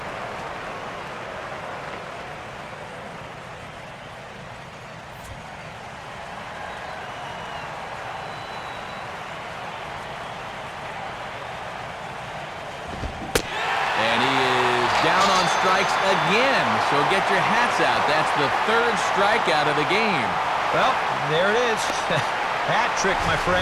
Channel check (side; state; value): both; identical; correlation 1.00